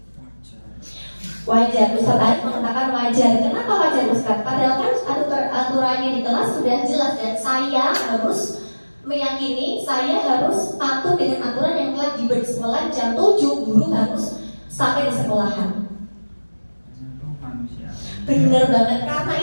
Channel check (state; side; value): inverted; both; correlation -1.00